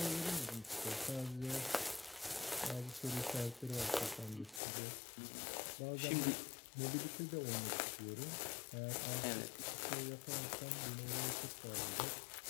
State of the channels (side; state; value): right; drops out; at 4.6 s